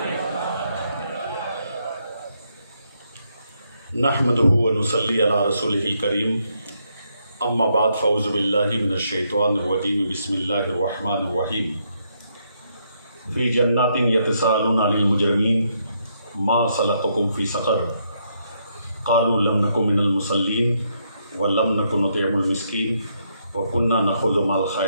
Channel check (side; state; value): both; inverted; correlation -0.76